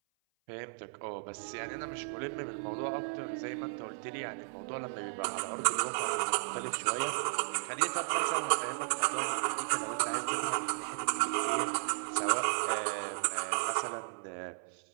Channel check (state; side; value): silent; left; 55 dB below the other